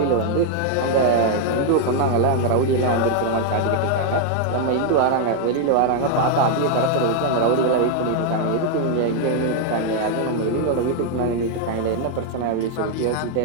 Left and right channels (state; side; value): different; both; correlation 0.00